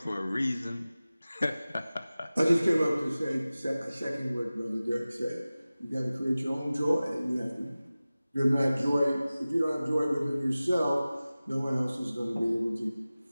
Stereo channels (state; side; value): inverted; both; correlation -0.97